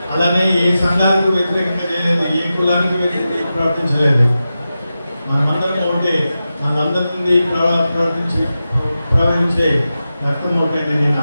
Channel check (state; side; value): inverted; both; correlation -0.92